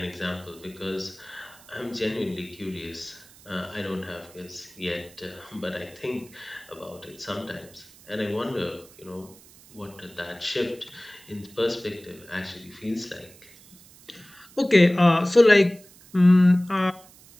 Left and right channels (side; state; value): right; noise; hiss, 23 dB below the sound